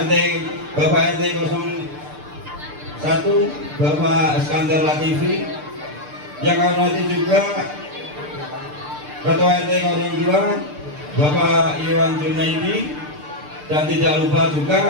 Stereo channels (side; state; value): left; late; 6.7 ms